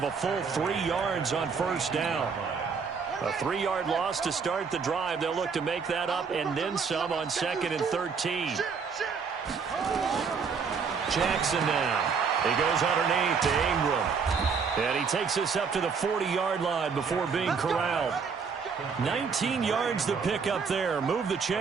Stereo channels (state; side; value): quieter; left; 5.7 dB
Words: a full 3 yards on first down. A 3-yard loss to start the drive. They'll look to make that up and then some on 2nd and 13. Jackson now. He goes underneath to Ingram. And he takes this up to the 40-yard line before being corralled. 19 yards to pick up there. Move the